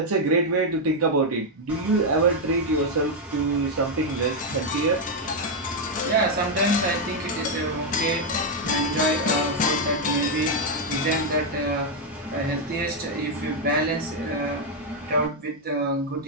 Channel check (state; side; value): normal; both; correlation 0.01